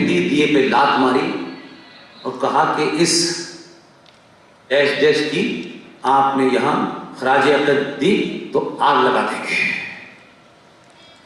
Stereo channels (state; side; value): identical; both; correlation 1.00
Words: दी, दिए पे लात मारी और कहा कि इस देश की आपने यहां खराजे अक़ीदत दी तो आग लगा देंगे।